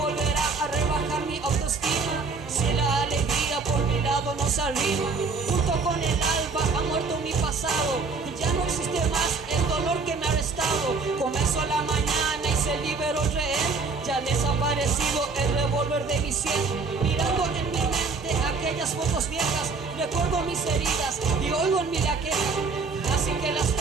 a rebajar mi autoestima si la alegría por mi lado no se arrima. Junto con el alba ha muerto mi pasado, ya no existe más el dolor que me ha arrestado. Comenzó la mañana y se liberó el rehén, ya ha desaparecido el revólver de mi sien. Mirando en mi mente aquellas fotos viejas, recuerdo mis heridas y oigo en mí la queja. Así que las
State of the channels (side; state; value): left; quieter; 4.4 dB